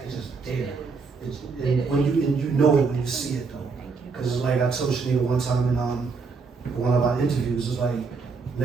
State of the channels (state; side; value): quieter; left; 4.7 dB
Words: just there. And you know it when you see it though, because it's like I told Shanita one time in one of our interviews. It's like